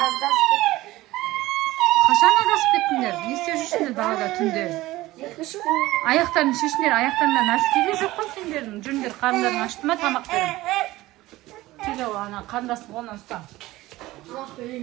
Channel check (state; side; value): quieter; left; 17.8 dB